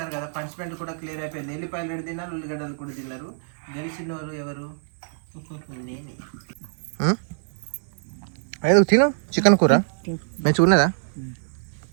కదా. పనిష్మెంట్ కూడా క్లియర్ అయిపోయింది. ఎల్లిపాయలు రెండు తిన్నారు, ఉల్లిగడ్డలు కూడా తిన్నారు. గెలిచిన వాళ్ళు ఎవరు? నేనే. అయ్యో తిను చికెన్ కూర మంచిగా ఉన్నదా?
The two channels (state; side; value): silent; left; 60 dB below the other